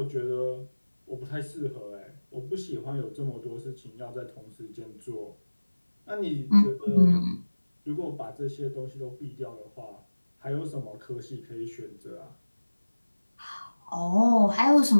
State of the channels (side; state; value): both; inverted; correlation -1.00